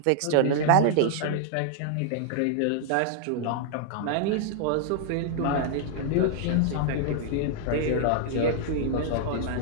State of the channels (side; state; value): both; different; correlation -0.01